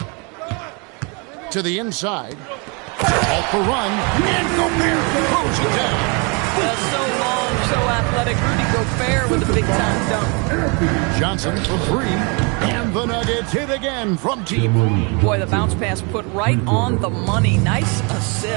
To the inside. Off the run. And Gobert throws it down. So long, so athletic. Rudy Gobert with a big-time dunk. Johnson for 3. And the Nuggets hit again from deep. Boy, the bounce pass put right on the money. Nice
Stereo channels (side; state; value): left; quieter; 32.3 dB